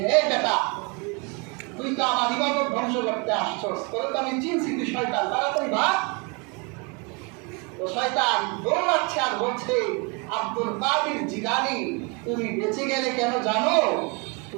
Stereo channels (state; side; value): quieter; left; 31.5 dB